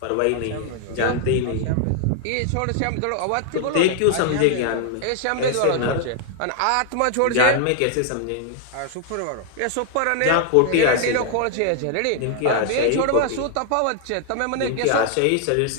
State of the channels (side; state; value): both; different; correlation 0.00